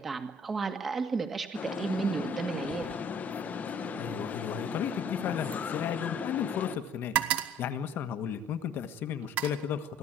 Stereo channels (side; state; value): both; normal; correlation 0.56